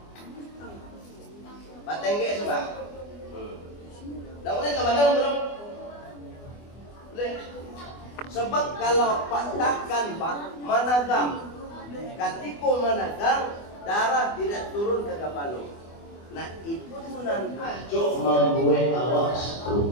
Pak Tengge sebab. Dah boleh teman-teman belum? Boleh. Sebab kalau Pak tekan Pak managam, ketika managam darah tidak turun ke kepala. Nah itu nan ajo membuat awak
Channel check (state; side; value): late; right; 24 ms